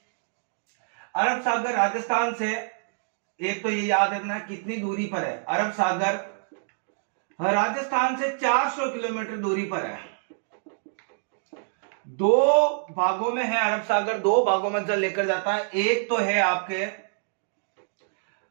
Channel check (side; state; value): left; silent; digital silence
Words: अरब सागर राजस्थान से, एक तो ये याद रखना कितनी दूरी पर है। अरब सागर राजस्थान से 400 किलोमीटर दूरी पर है। दो भागों में है अरब सागर, दो भागों में जल लेकर जाता है। एक तो है आपके